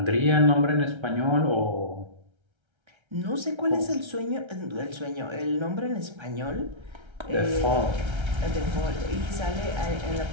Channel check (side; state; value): left; late; 1.3 ms